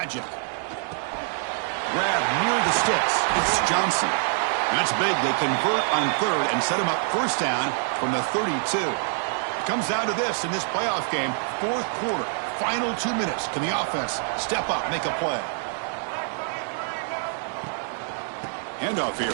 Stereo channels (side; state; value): left; silent; 61 dB below the other